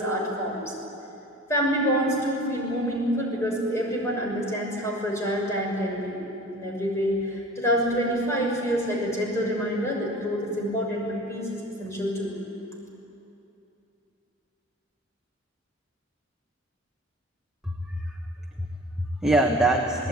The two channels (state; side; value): normal; both; correlation 0.41